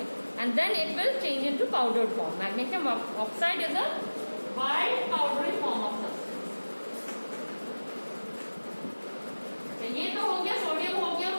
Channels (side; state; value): both; inverted; correlation -1.00